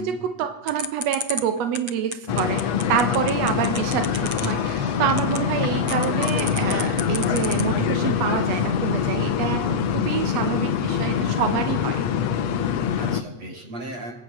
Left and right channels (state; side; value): late; left; 8.3 ms